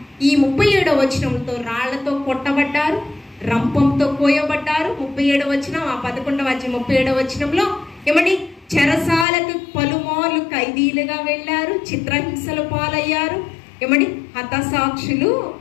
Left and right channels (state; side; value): drops out; right; at 9.2 s